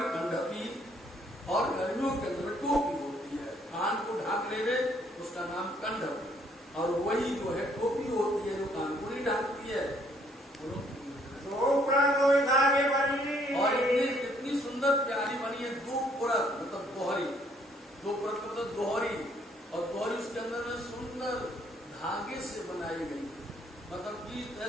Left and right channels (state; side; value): normal; both; correlation 0.66